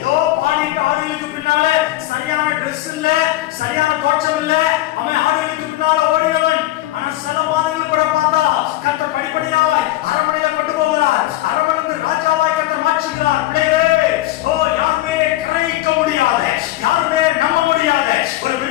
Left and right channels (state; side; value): quieter; right; 15.8 dB